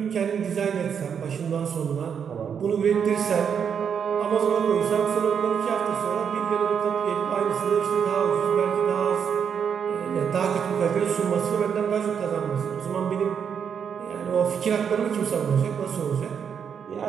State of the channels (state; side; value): quieter; left; 7.4 dB